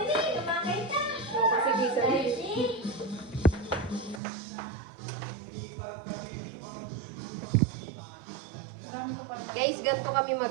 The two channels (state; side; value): drops out; left; at 4.2 s